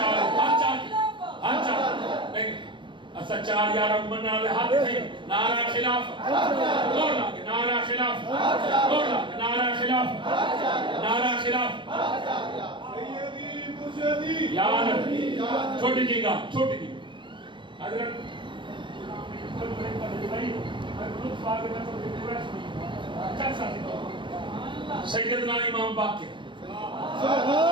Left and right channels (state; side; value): late; left; 0.23 ms